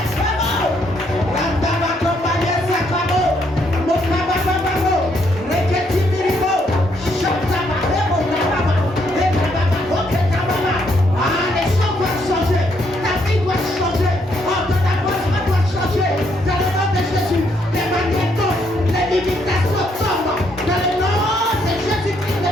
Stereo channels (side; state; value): both; normal; correlation 0.73